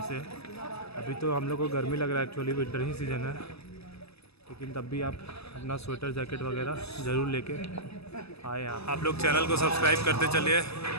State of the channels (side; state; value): right; late; 0.79 ms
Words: से। अभी तो हम लोग को गर्मी लग रहा है, एक्चुअली विंटर ही सीज़न है, लेकिन तब भी आप अपना स्वेटर, जैकेट वगैरह ज़रूर लेके आए यहाँ। आप लोग चैनल को सब्सक्राइब करते चलिए